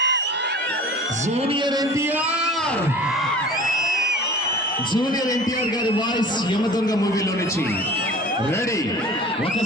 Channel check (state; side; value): normal; both; correlation 0.42